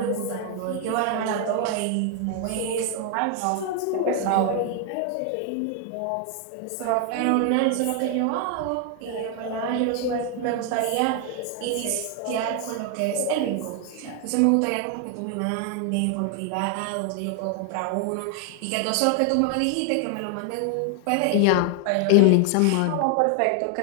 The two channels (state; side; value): different; both; correlation 0.00